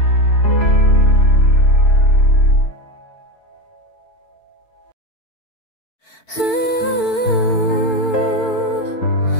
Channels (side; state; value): right; late; 4.5 ms